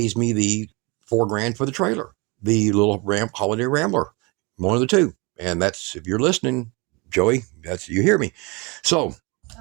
me the $4,000 for the trailer, the little Holiday Rambler, one of the two. And that's, if you're listening, Joey, that's, you hear me. So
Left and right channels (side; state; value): left; quieter; 27.7 dB